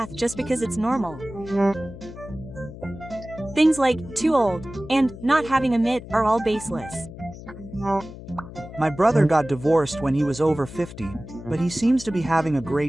just because it's normal? Things like too old and not having a MIT are all baseless. My brother got divorced when he was over 50, but he seems to be having a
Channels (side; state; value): left; noise; hum, 14 dB below the sound